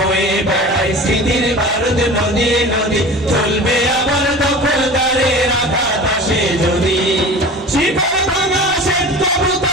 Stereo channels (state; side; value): normal; both; correlation 0.36